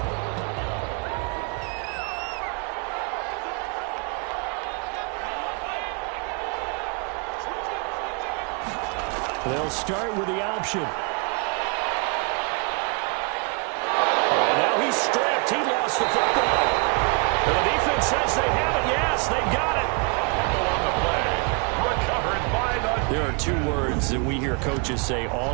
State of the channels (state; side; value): quieter; left; 34.0 dB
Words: They'll start with the option. And now he's stripped. He lost the football. And the defense says they have it. Yes, they got it. On the play. Recovered by the... There are 2 words that we hear coaches say